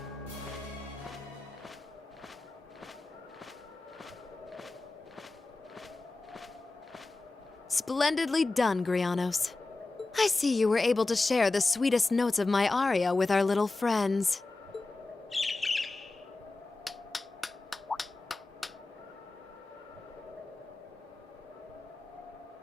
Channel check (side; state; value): right; quieter; 3.4 dB